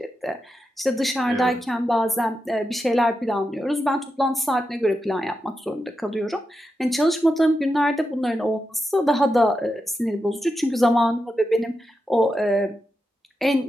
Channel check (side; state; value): both; normal; correlation 0.88